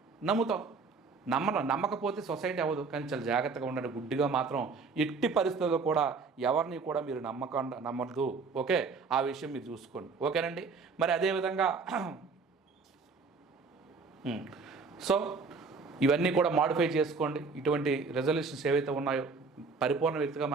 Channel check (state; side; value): quieter; left; 4.6 dB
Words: నమ్ముతాం. నమ్మకపోతే సొసైటీ అవ్వదు. కానీ చాలా జాగ్రత్తగా ఉండండి. గుడ్డిగా మాత్రం ఎట్టి పరిస్థితుల్లో కూడా ఎవరిని కూడా మీరు నమ్మద్దు. ఓకే, ఆ విషయం మీరు చూసుకోండి. ఓకేనండి. మరి అదేవిధంగా సో ఇవన్నీ కూడా మాడిఫై చేసుకోండి. ఇటువంటి రెజల్యూషన్స్ ఏవైతే ఉన్నాయో, పరిపూర్ణ వ్యక్తిగా